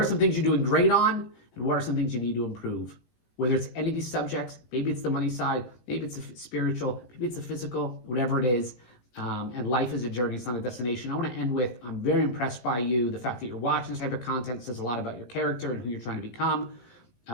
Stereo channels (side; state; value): right; late; 17 ms